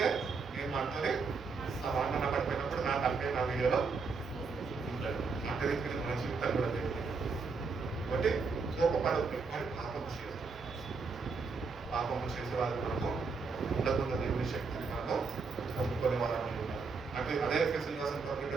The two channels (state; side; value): quieter; left; 4.6 dB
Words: నేను మాట్లాడి సమాధాన పడిపోయినప్పుడు నా తలకాయ నా వీడియోలో ఉంటాడు. అంటే మన జీవితాలు కూడా జరిగింది. కాబట్టి కోపపడద్దు కానీ పాపము చేసే వాళ్ళు మనము ఉండకుండా దేవుని శక్తిని మనము పొందుకునే వాళ్ళని ఉన్నారు. అంటే అదే ఎఫెసీయులకు రాసిన పత్రిక